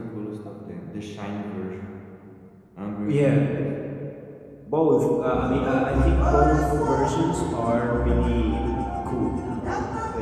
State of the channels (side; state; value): both; identical; correlation 1.00